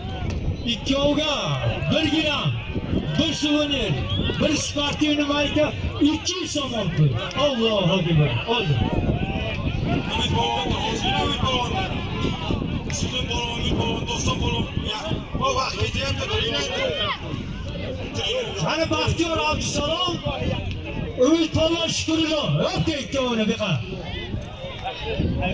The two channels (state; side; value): identical; both; correlation 1.00